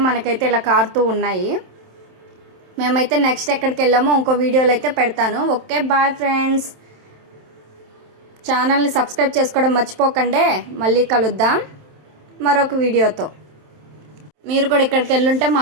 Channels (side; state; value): left; late; 27 ms